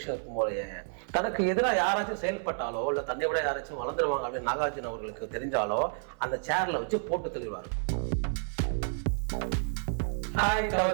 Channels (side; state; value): left; silent; 58 dB below the other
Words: இருக்கும் போலயே. தனக்கு எதிராக யாராச்சும் செயல்பட்டாலோ இல்லை தன்னை விட யாராச்சும் வளர்ந்துருவாங்க அப்படின்னு நாகார்ஜுன அவர்களுக்கு தெரிஞ்சாலோ அந்த சேரில் வச்சு போட்டு தள்ளிடுவார். ஹாய்